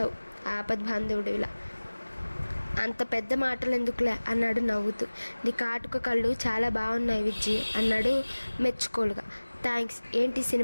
ఆపద్బాంధవుడిలా. అంత పెద్ద మాటలు ఎందుకులే అన్నాడు నవ్వుతూ. నీ కాటుక కళ్ళు చాలా బాగున్నాయి విజ్జి అన్నాడు మెచ్చుకోలుగా. థ్యాంక్స్. ఏంటి,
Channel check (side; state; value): both; inverted; correlation -1.00